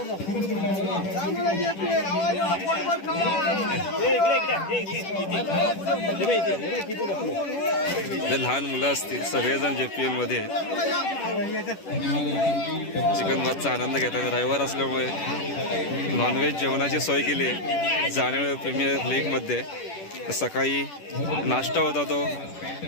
लहान मुलं असतील सगळेजण JPL मध्ये चिकन भातचा आनंद घेतात. रविवार असल्यामुळे नॉनव्हेज जेवणाची सोय केली आहे जाणवे प्रीमियर लीगमध्ये. सकाळी नाश्ता होता, तो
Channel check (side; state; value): right; late; 10 ms